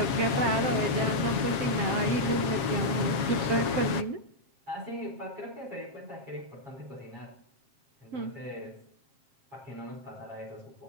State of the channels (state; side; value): late; left; 7.3 ms